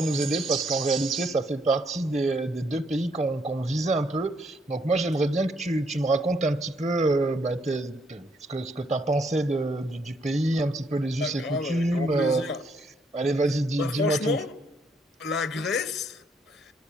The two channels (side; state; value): both; normal; correlation 0.72